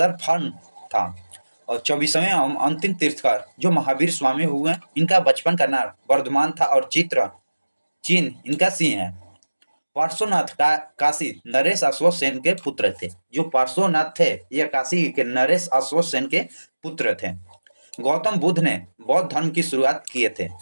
था। और 24वें अंतिम तीर्थकर जो महावीर स्वामी हुए, इनका बचपन का नाम वर्धमान था और चिन्ह इनका सिंह है। पार्श्वनाथ काशी नरेश अश्वत्थ सेन के पुत्र थे। जो पार्श्वनाथ थे, यह काशी के नरेश अश्वत्थ सेन के पुत्र थे। गौतम बुद्ध ने बौद्ध धर्म की शुरुआत किए थे।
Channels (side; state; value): both; inverted; correlation -1.00